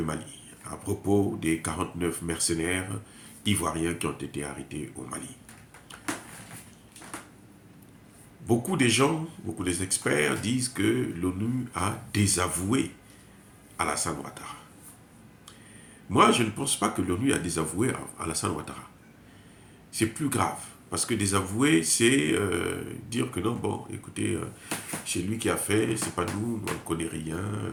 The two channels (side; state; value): both; identical; correlation 1.00